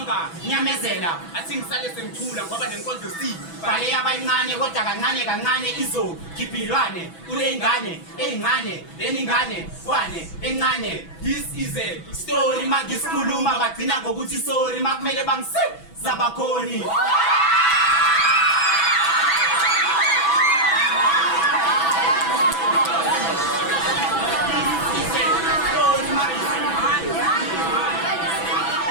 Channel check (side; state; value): right; late; 6.1 ms